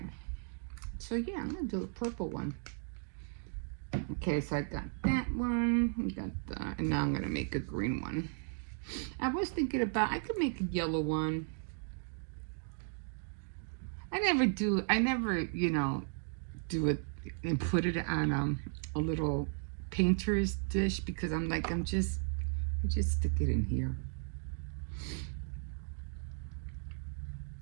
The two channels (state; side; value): silent; left; 54 dB below the other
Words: So yeah, I'm gonna do a purple one. Okay, so I got that one. And now I'm gonna make a green one. I was thinking about, I could make a yellow one. I never, you know, do it and put it on a little painter's dish because I'm like, I just stick it in here.